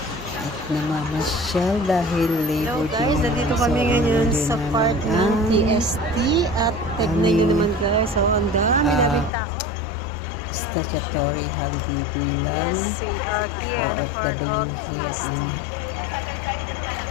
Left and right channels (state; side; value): drops out; right; at 9.3 s